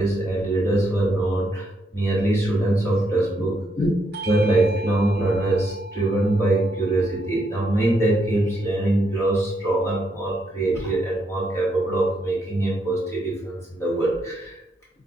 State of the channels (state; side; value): normal; both; correlation 0.77